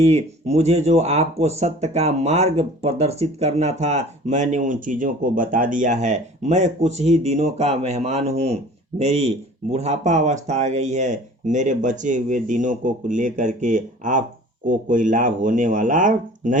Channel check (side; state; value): both; normal; correlation 0.46